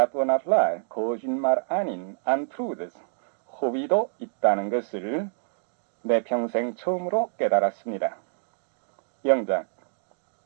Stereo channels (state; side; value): silent; left; digital silence